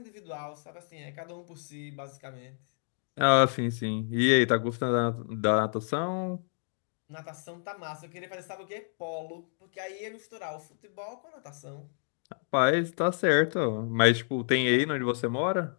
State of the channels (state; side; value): silent; right; digital silence